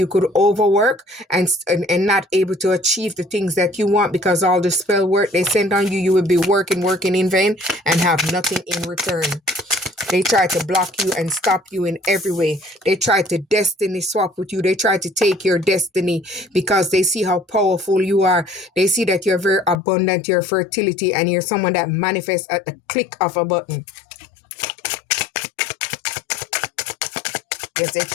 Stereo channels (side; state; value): right; drops out; at 19.8 s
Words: could overwork and not able to achieve the things that you want, because all the spell work they send on you, you will be working in vain and have nothing in return. They try to block you and stop you in every way. They try to destiny swap with you. They try to take your destiny because they see how powerful you are. They see that you're very abundant, your fertility, and you're someone that manifests at the click of a button. Yes, they